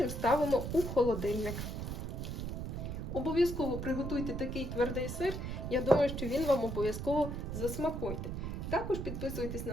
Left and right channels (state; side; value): noise; right; rumble, 4 dB below the sound